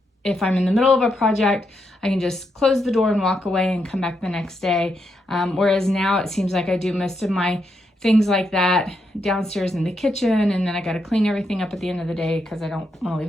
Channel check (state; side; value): normal; both; correlation 0.81